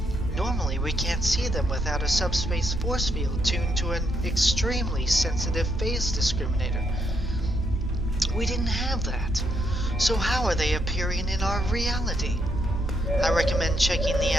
Normally, we can't see them without a subspace force field tuned to an extremely sensitive phase discriminator. We didn't have that. So how are they appearing in our reality? I recommend checking the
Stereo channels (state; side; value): normal; both; correlation 0.77